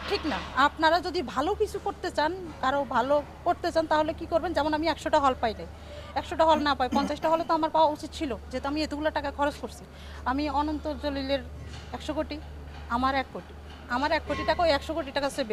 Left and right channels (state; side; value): identical; both; correlation 1.00